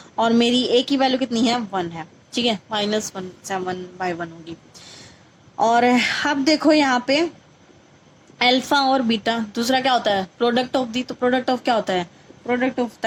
और मेरी a की वैल्यू कितनी है, 1 है। ठीक है, -1, 7/1 होगी। और अब देखो यहाँ पे अल्फा और बीटा, दूसरा क्या होता है, प्रोडक्ट ऑफ दी। तो प्रोडक्ट ऑफ क्या होता है, प्रोडक्ट ऑफ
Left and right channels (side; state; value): both; identical; correlation 1.00